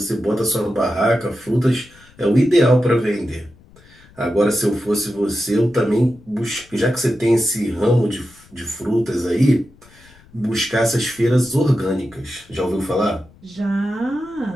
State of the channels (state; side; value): noise; left; rumble, 27 dB below the sound